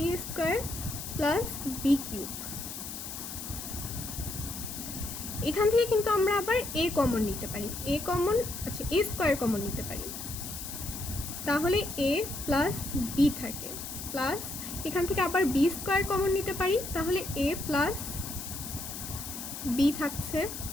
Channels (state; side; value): noise; left; hiss, 8 dB below the sound